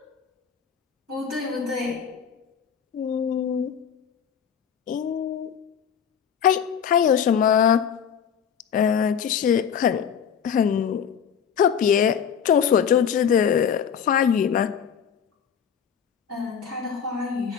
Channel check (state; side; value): quieter; right; 7.7 dB